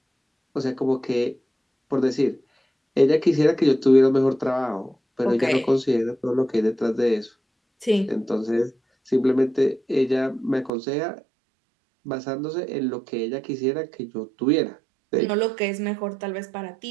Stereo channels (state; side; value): drops out; left; at 10.7 s